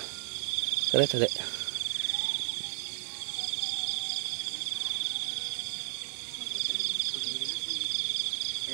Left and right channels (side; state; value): left; silent; digital silence